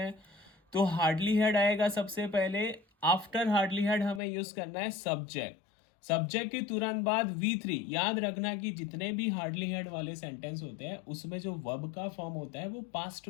तो हार्डली हेड आएगा सबसे पहले। आफ्टर हार्डली हेड हमें यूज करना है सब्जेक्ट। सब्जेक्ट के तुरंत बाद V3। याद रखना कि जितने भी हार्डली हेड वाले सेंटेंस होते हैं उसमें जो वर्ब का फॉर्म होता है वो पास्ट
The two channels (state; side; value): drops out; right; at 4.2 s